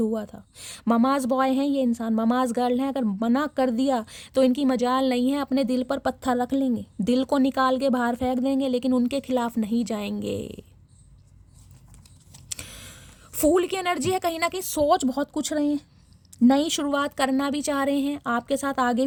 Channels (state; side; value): identical; both; correlation 1.00